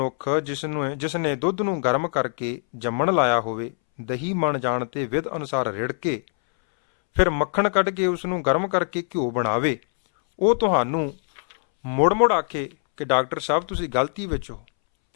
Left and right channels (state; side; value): silent; right; 63 dB below the other